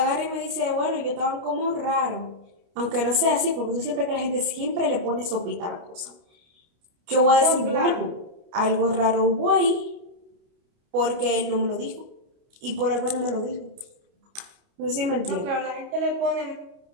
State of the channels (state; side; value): late; left; 29 ms